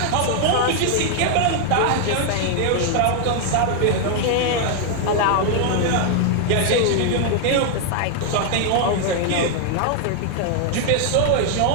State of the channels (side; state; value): both; different; correlation 0.00